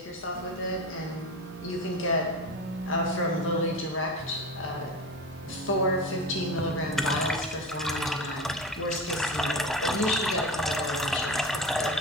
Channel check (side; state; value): both; normal; correlation 0.27